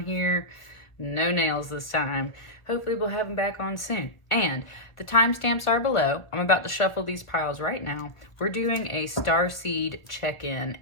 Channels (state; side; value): late; right; 1.2 ms